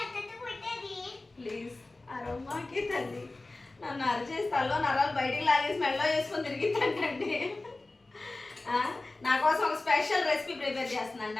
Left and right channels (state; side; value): quieter; right; 3.1 dB